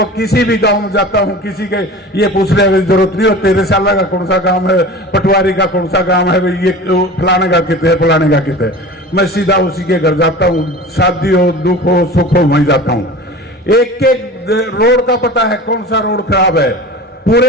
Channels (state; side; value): normal; both; correlation 0.36